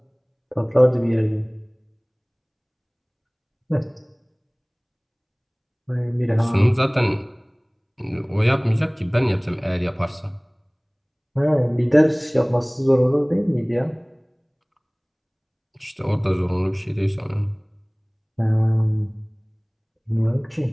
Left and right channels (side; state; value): both; identical; correlation 1.00